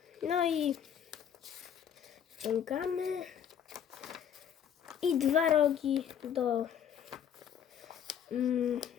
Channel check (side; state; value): right; quieter; 8.7 dB